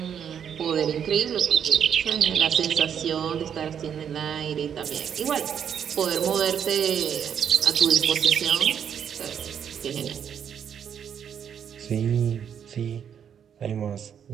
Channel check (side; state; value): left; quieter; 8.3 dB